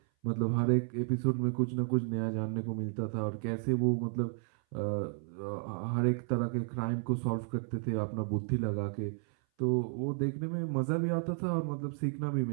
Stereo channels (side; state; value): left; silent; 56 dB below the other